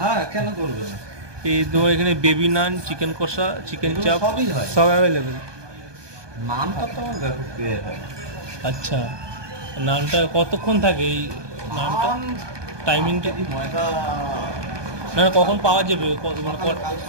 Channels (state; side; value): late; left; 1.2 ms